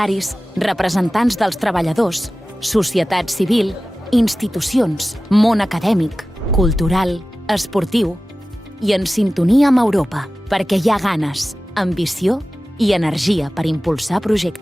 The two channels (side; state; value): both; normal; correlation 0.95